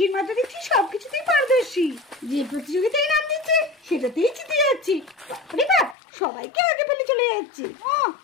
মা তো দেখছি সবকিছুতেই পারদর্শী। যে প্রতিযোগিতায় নাম দিচ্ছে সেটাতেই জিতে যাচ্ছি। সবাইকে আগে ফেলে চলে যাচ্ছে।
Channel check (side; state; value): right; drops out; at 6.0 s